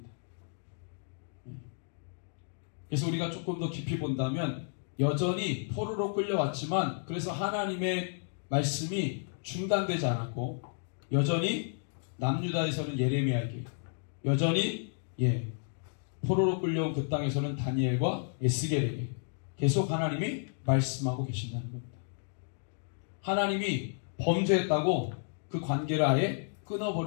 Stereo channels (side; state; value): right; silent; digital silence